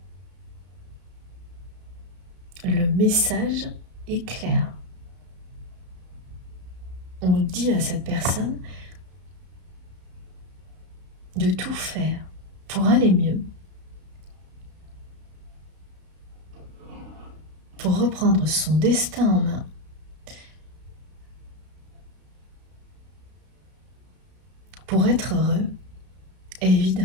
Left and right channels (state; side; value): late; left; 32 ms